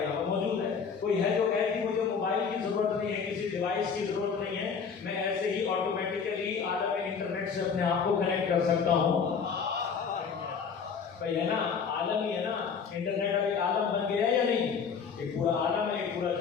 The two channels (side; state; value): right; quieter; 6.1 dB